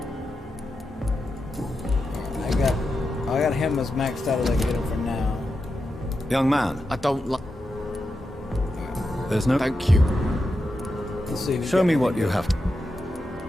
I got him as maxed out as I can get him for now. Young man, I don't like. there's no... Thank you. Let's see. Show me what you have.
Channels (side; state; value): both; normal; correlation 0.88